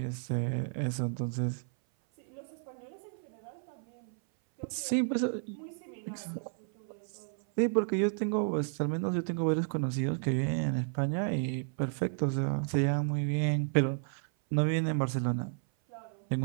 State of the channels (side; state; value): left; silent; 56 dB below the other